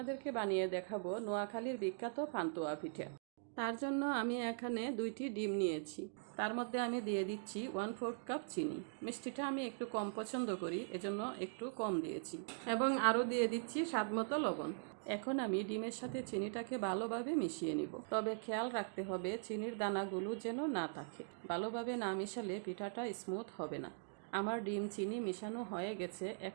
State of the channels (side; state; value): left; silent; digital silence